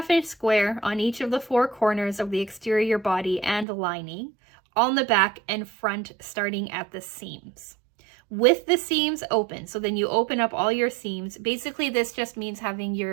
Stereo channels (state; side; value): drops out; left; at 3.7 s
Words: square on each of the 4 corners of the exterior body and lining on the back and front, starting at the seams, with the seams open. So then you open up all your seams. Basically, this just means having